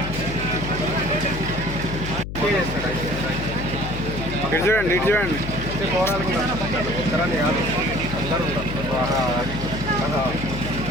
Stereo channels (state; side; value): noise; left; hum, 7 dB below the sound